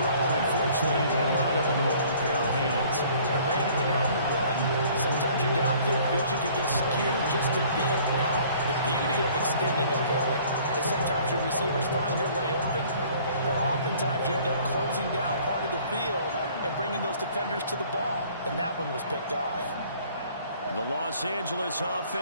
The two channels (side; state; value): both; inverted; correlation -0.54